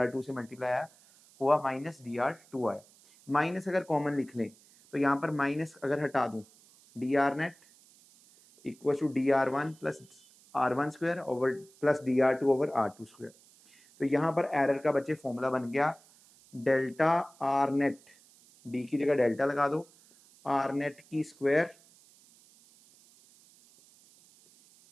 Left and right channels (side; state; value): right; noise; hiss, 27 dB below the sound